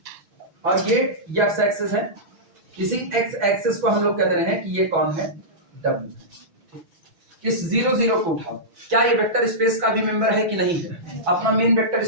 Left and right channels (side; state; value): left; late; 6.1 ms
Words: और ये x एक्सिस है, इसी x एक्सिस को हम लोग कह रहे हैं कि ये कौन है, W। इस 0 0 को उठाओ, क्या ये वेक्टर स्पेस का भी मेंबर है कि नहीं है, अपना मेन वेक्टर